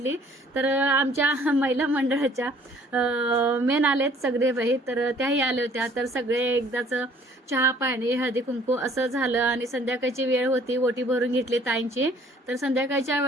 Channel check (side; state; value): both; normal; correlation 0.56